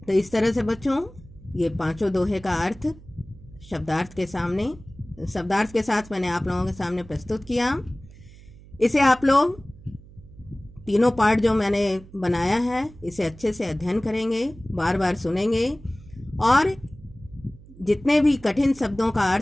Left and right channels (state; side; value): noise; right; hum, 21 dB below the sound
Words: तो इस तरह से बच्चों, ये पांचों दोहे का अर्थ शब्दार्थ के साथ मैंने आप लोगों के सामने प्रस्तुत किया। इसे आप लोग तीनों पार्ट जो मैंने बनाया है इसे अच्छे से अध्ययन करेंगे, बार बार सुनेंगे और जितने भी कठिन शब्दों का